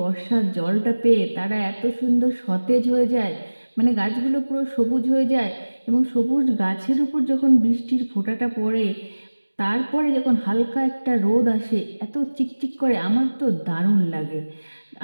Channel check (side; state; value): both; inverted; correlation -1.00